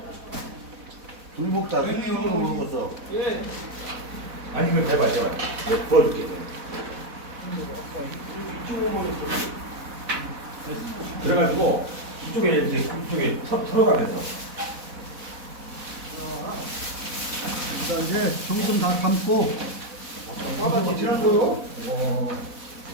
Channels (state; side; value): late; left; 4.1 ms